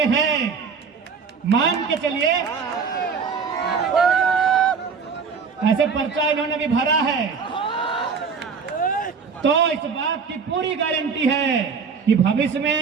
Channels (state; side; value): quieter; left; 5.7 dB